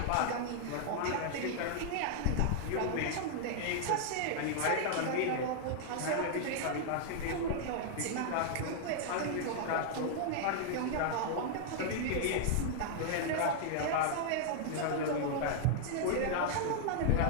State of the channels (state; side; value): different; both; correlation -0.01